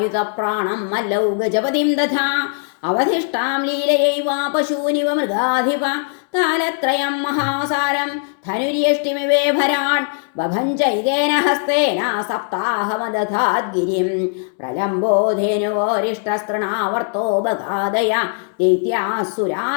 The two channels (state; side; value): silent; right; 63 dB below the other